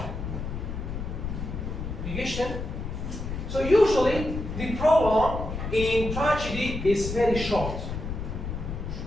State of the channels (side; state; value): left; noise; rumble, 5 dB below the sound